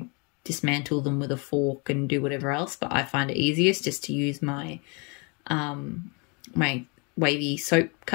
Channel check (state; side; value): quieter; right; 32.7 dB